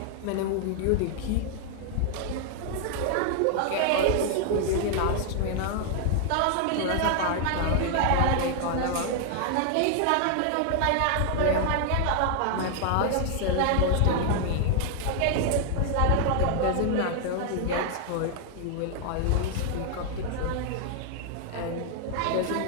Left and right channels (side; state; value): both; different; correlation 0.00